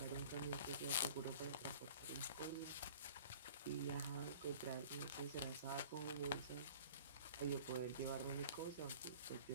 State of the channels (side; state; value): both; inverted; correlation -0.46